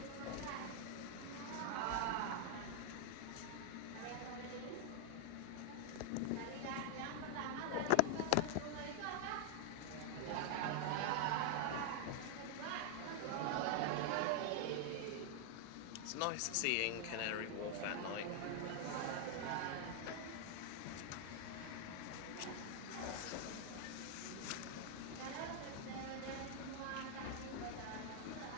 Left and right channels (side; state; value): both; different; correlation 0.00